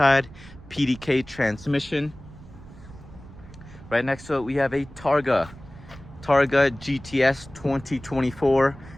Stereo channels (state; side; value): noise; right; rumble, 18 dB below the sound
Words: PDK transmission. Right next to it, we have a Targa GTS 2024